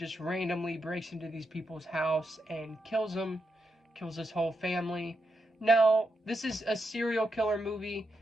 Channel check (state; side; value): normal; both; correlation 0.84